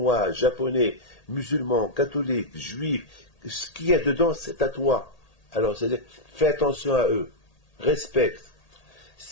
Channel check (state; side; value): late; right; 1.8 ms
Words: japonais, musulmans, catholiques, juifs, ce qu'il y a dedans, c'est à toi. Alors, c'est-à-dire, fais attention à eux, respecte.